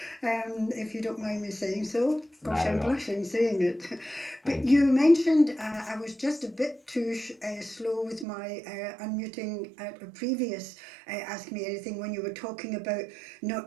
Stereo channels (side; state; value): left; drops out; at 8.2 s